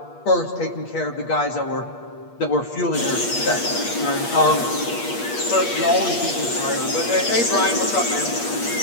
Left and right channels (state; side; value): late; right; 8.5 ms